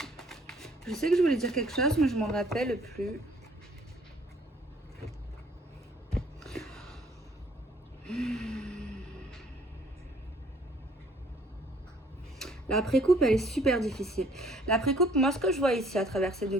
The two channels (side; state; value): both; normal; correlation 0.59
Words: Je sais que je voulais dire quelque chose, mais je m'en rappelle plus. La précoupe, elle est super difficile. La précoupe, moi, ce que je vois ici à travers ces deux